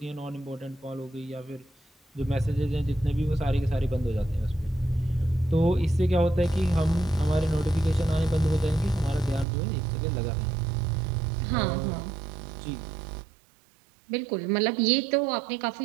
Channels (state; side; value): drops out; left; at 9.5 s